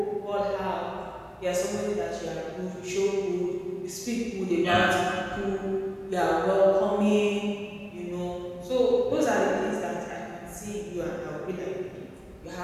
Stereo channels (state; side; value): identical; both; correlation 1.00